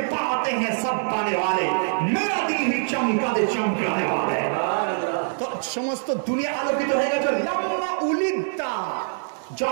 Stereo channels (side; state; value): left; silent; digital silence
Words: পাতে হ্যাঁ সব পানে वाले, মেরা দিল হি চমকা দে চমকানে वाले। তো সমস্ত দুনিয়া আলোকিত হয়ে গেছে। লাম্মা উলিদতা,